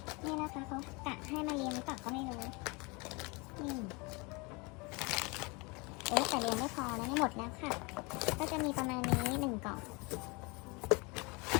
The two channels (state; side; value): quieter; right; 28.0 dB